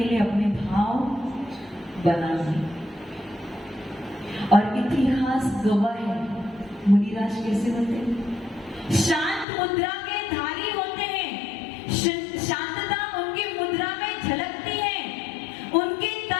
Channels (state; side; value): drops out; right; at 9.5 s